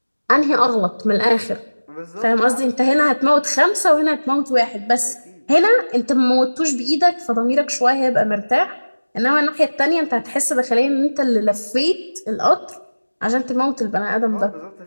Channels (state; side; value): inverted; both; correlation -1.00